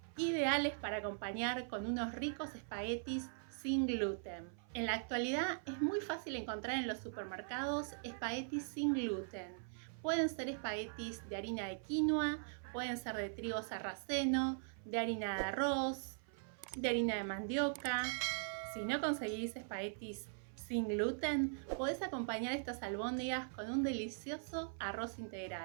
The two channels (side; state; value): left; silent; 50 dB below the other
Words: ideales para acompañar con unos ricos espaguetis sin gluten. En la actualidad es muy fácil encontrar en los supermercados espaguetis sin gluten. Pueden ser espaguetis de harina de quinoa, pueden ser de trigo sarraceno, de harina de arroz, de harina de mandioca. Si no conseguís espaguetis sin gluten, podés acompañar estas albóndigas con un delicioso arroz